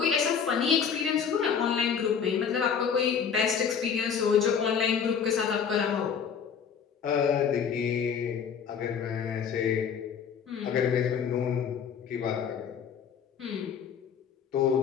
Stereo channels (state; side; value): quieter; right; 7.1 dB